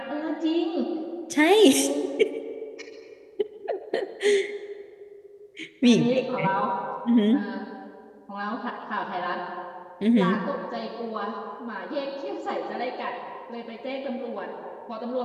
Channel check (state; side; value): identical; both; correlation 1.00